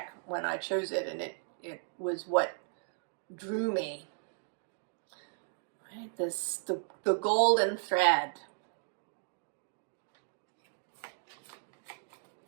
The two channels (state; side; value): silent; left; digital silence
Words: when I chose it, and it was what drew me. Right? The golden thread.